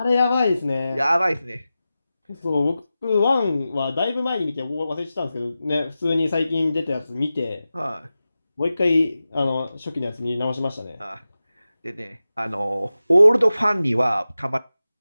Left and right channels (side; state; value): both; inverted; correlation -0.94